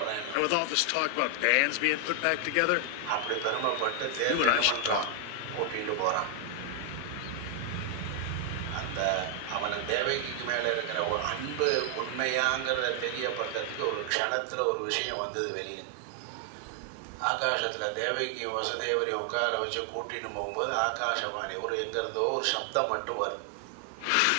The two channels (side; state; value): both; different; correlation 0.00